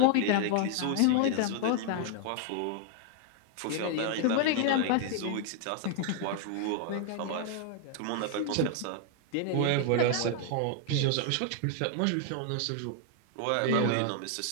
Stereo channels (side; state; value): both; different; correlation 0.00